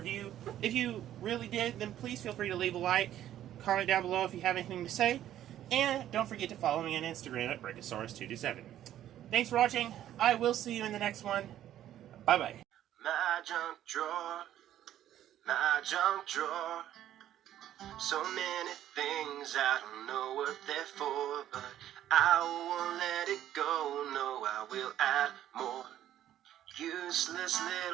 If you really did, then please feel free to leave a like, comment down below if you have anything to say, and don't forget to follow me on Instagram at Brachiosaurus227. Thanks for watching. I will see you in the next one. Bye-bye. My junk drawer, my junk drawer. So many things, I don't know what they're for, but I won't let it go. No, I will add more useless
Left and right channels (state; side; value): quieter; left; 11.9 dB